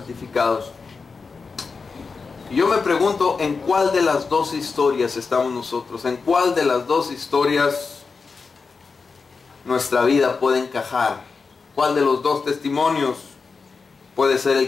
Y yo me pregunto, ¿en cuál de las 2 historias estamos nosotros? ¿En cuál de las 2 historias nuestra vida puede encajar? ¿Cuál de los 2 testimonios puede ser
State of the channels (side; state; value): right; quieter; 4.8 dB